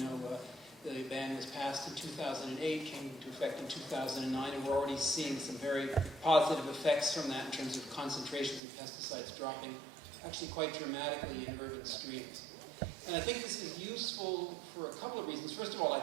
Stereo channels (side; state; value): left; drops out; at 8.6 s